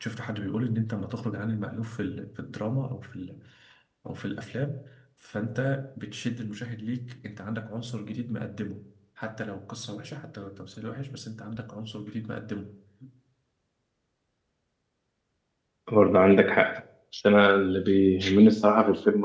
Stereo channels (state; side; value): identical; both; correlation 1.00